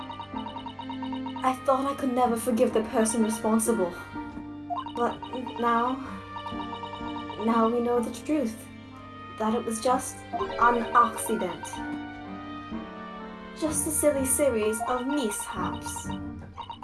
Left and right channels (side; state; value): both; identical; correlation 1.00